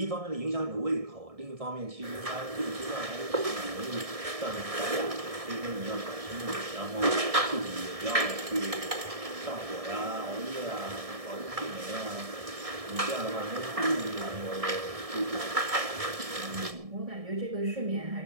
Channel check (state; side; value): late; left; 1.6 ms